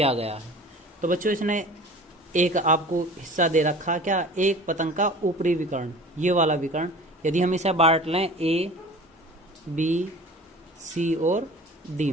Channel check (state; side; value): normal; both; correlation 0.41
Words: गया है। तो बच्चों इसने एक आपको हिस्सा दे रखा, क्या, एक पतंग का ऊपरी विकर्ण, ये वाला विकर्ण, यदि हम इसे बांट लें ए, बी, सी और डी